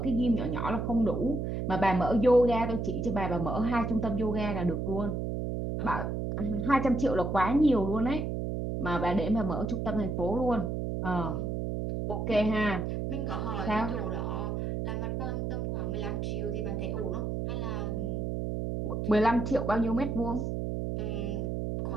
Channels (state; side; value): noise; right; hum, 2 dB below the sound